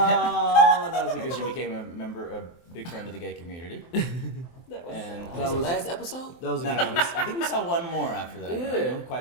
that was a And good she one. became a big friend of the gay community. That was And That was last episode? That was a no, good no, I think we saw one more after that. Yeah. I don't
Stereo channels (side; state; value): right; late; 23 ms